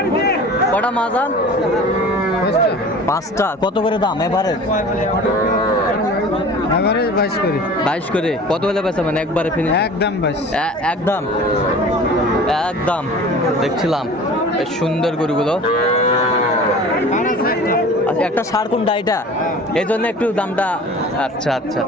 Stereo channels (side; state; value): both; normal; correlation 0.41